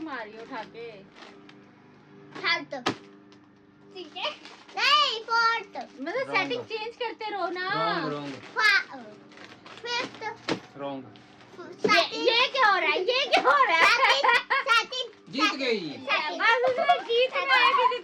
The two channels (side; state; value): both; identical; correlation 1.00